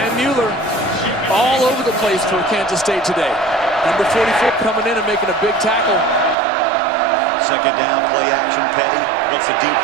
Mueller. All over the place for Kansas State today. Number 44 coming in and making a big tackle. Second down, play action. Petty once the deep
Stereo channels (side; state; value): left; drops out; at 6.4 s